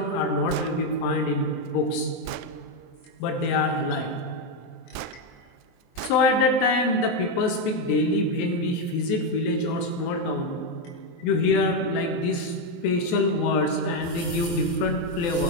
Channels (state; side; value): late; right; 24 ms